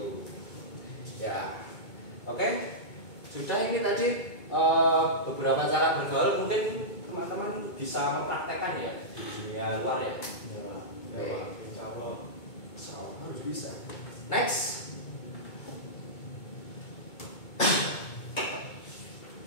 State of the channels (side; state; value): right; late; 2.2 ms